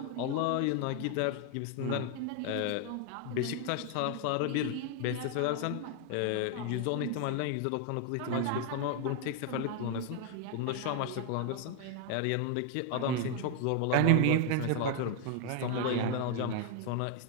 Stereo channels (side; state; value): both; different; correlation 0.00